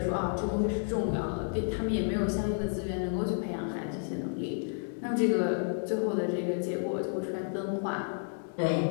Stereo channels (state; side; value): silent; right; digital silence